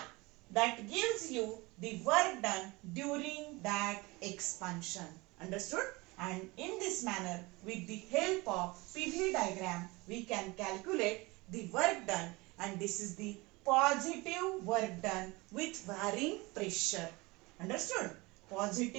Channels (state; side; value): quieter; left; 23.7 dB